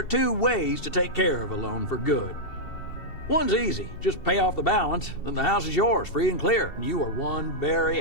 two ways to take care of a loan for good. One's easy. Just pay off the balance, then the house is yours, free and clear, and you are one very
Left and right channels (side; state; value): right; late; 2.7 ms